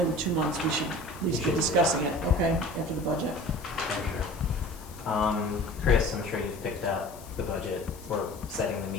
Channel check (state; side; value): noise; left; hiss, 20 dB below the sound